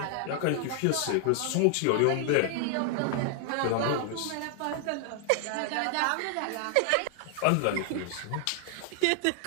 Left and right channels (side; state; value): both; different; correlation 0.00